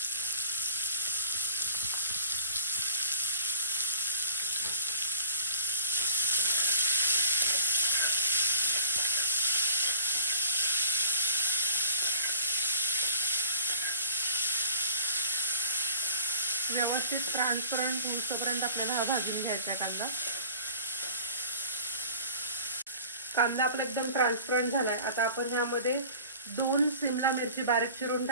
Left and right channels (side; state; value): both; inverted; correlation -0.44